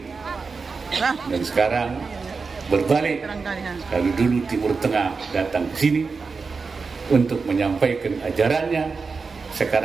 Dan sekarang berbalik, kalau dulu Timur Tengah datang ke sini untuk menyampaikan ajarannya,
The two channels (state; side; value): quieter; left; 4.7 dB